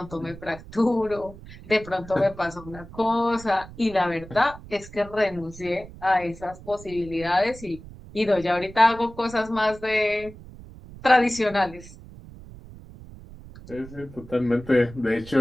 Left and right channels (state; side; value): noise; right; rumble, 17 dB below the sound